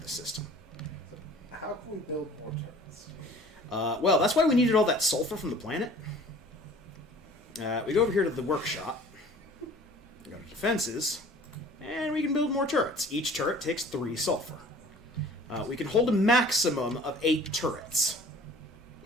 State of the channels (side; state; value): both; normal; correlation 0.49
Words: the system. How can we build more turrets? Well, that's why we needed all that sulfur from the planet. We go over here to the workshop. Go to defenses. And we can build more turrets. Each turret takes 3 sulfur. We can hold a maximum of 8 turrets